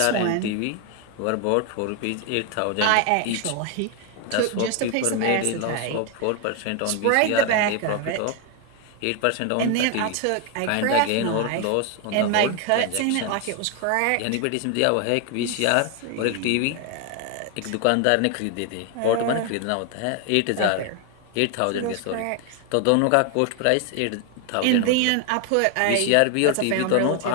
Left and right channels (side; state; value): both; different; correlation 0.01